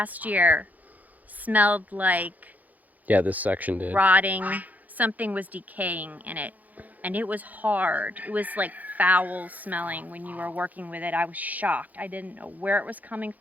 year smelled like... Yeah, this section did. Rotting. Something was decaying in it. And it was hard. It was like foul smelling when you were working with it. I was shocked. I didn't know where it was coming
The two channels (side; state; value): left; late; 0.080 ms